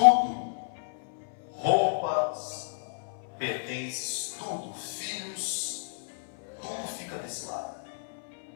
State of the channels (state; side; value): silent; right; 57 dB below the other